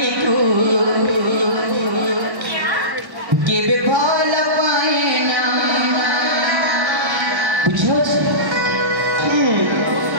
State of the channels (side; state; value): left; late; 1.1 ms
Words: को के विफल पाए ना बुझो